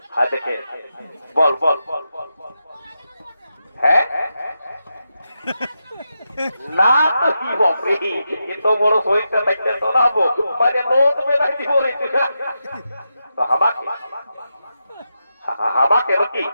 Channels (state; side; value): inverted; both; correlation -0.87